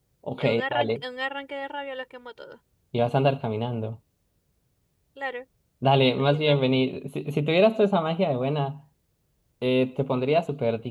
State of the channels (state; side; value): identical; both; correlation 1.00